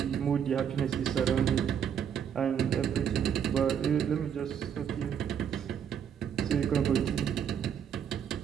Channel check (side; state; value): left; quieter; 8.3 dB